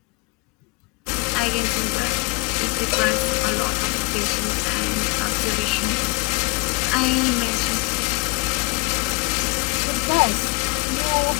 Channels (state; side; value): quieter; right; 27.7 dB